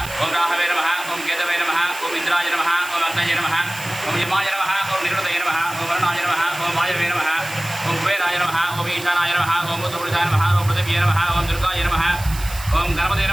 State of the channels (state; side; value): noise; right; hiss, 13 dB below the sound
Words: ओम राहवे नमः ओम केतवे नमः ओम इंद्राय नमः ओम अग्नये नमः ओम यमाय नमः ओम निरुतये नमः ओम वरुणाय नमः ओम वायवे नमः ओम कुबेराय नमः ओम ईशानाय नमः ओम उत्तरपुरुषाय नमः ओम पृथिव्यै नमः ओम दुर्गाय नमः ओम गणपतये